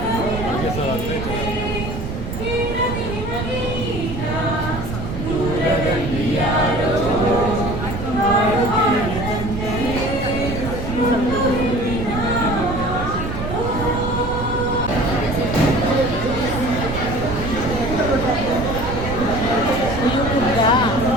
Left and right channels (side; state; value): right; noise; rumble, 6 dB below the sound